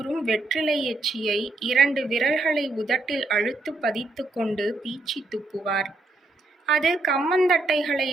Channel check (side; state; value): left; quieter; 3.0 dB